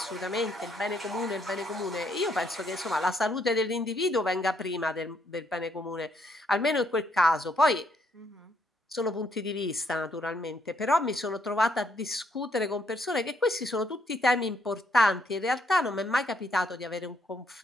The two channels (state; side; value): normal; both; correlation 0.72